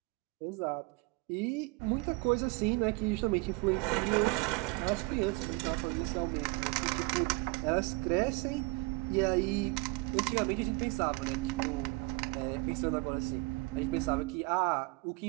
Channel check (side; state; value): left; quieter; 26.3 dB